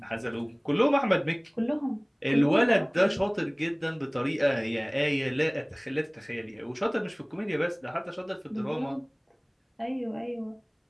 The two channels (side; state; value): both; identical; correlation 1.00